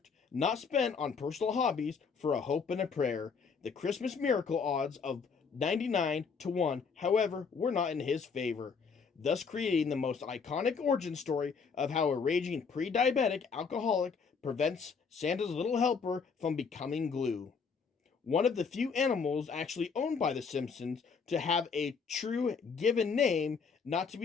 not spent on personal hobbies for a hope and a prayer. The Christmas miracle odds of 99 to 1, however, were not in his favor, thus creating the most iconic origin story of how a raging pre-diabetic alcoholic prevents Santa's little helper from becoming glue. One of the few animals actually owned by the Simpsons to have a true given name, not to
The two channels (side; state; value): right; quieter; 5.6 dB